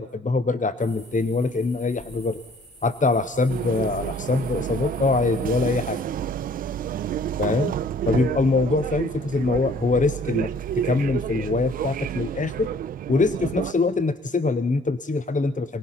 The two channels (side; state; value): both; normal; correlation 0.57